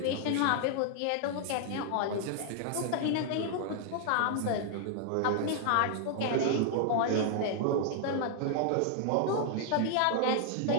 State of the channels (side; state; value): both; different; correlation 0.00